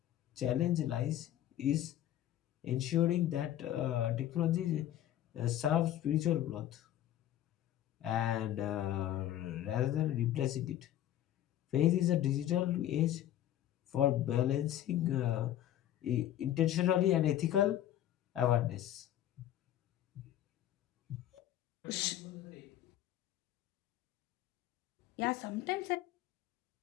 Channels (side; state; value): right; quieter; 12.3 dB